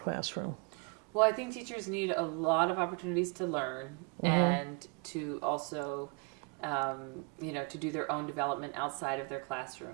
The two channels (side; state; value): left; quieter; 35.3 dB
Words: Well, I think teachers need a lot of opportunities to learn and to also, to do their own development outside of their